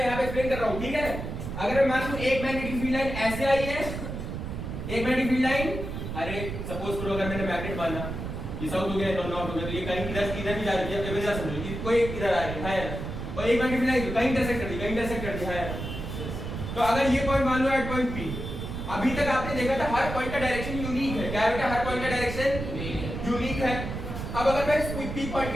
यहां पे एक्सप्लेन कर रहा हूं, ठीक है? अगर मैं मान लूं एक मैग्नेटिक फील्ड लाइन ऐसे आई है, एक मैग्नेटिक फील्ड लाइन, अरे सपोज करो अगर मैंने मैग्नेट माना ये साउथ हो गया, नॉर्थ हो गया, तो ये कहीं इधर भी जा रही है, इधर समझो ये कोई इधर आ रही है, और एक मैग्नेटिक फील्ड लाइन कहीं इंटरसेक्ट कर दी, है। तो अगर ये पॉइंट मान लो एट पॉइंट पी, अभी तक आपने देखा था हर पॉइंट का डायरेक्शन यूनिक है। क्या है बेटा? हर पॉइंट का डायरेक्शन यूनिक है। अब अगर मैं इस पी पॉइंट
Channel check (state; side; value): noise; right; rumble, 6 dB below the sound